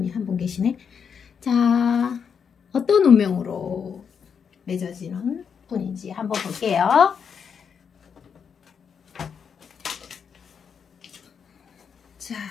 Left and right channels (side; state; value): right; quieter; 6.8 dB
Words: 한 분 계시네. 자, 어떤 운명으로 맺어지는 분인지 한번 볼게요. 자,